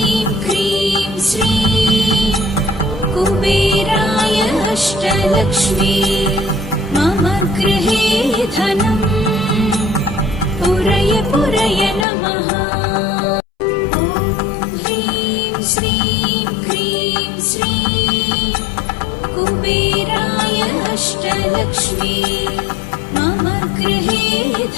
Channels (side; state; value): right; drops out; at 12.1 s